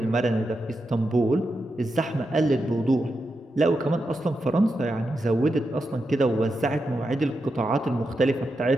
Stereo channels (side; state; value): both; normal; correlation 0.87